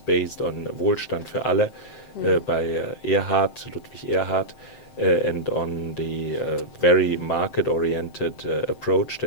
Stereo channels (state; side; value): late; right; 7.7 ms